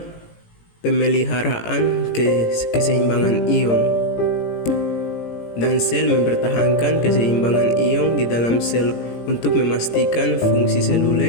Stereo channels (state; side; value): late; right; 17 ms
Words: Pemeliharaan keseimbangan ion. Dan sel mempertahankan keseimbangan ion di dalam sel untuk memastikan fungsi